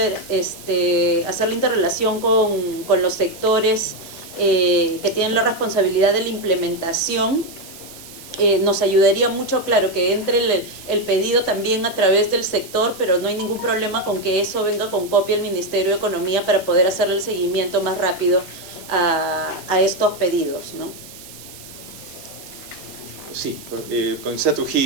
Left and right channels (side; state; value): right; noise; hiss, 17 dB below the sound